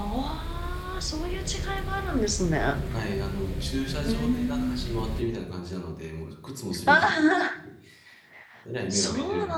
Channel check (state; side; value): identical; both; correlation 1.00